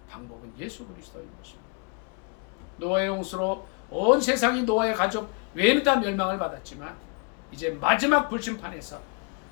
방법은 예수 그리스도인 것입니다. 노아의 홍수로 온 세상이 노아의 가족 외에는 다 멸망을 받았지만 이제 마지막 불심판에서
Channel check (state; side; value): quieter; right; 34.2 dB